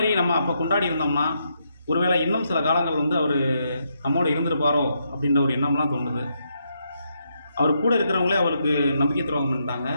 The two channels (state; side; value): inverted; both; correlation -0.79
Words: நம்ம அப்போ கொண்டாடி இருந்தோம்னா ஒருவேளை இன்னும் சில காலங்கள் அவர் நம்மோடு இருந்திருப்பாரோ அப்படின்ற ஒரு எண்ணம்லாம் தோணுது. அவர் கூட இருக்கிறவங்களே அவருக்கு நம்பிக்கை துரோகம் பண்ணிட்டாங்க.